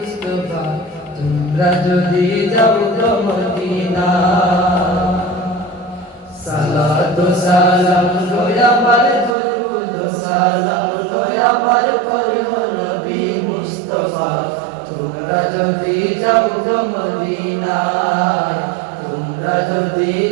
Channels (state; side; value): drops out; left; at 9.3 s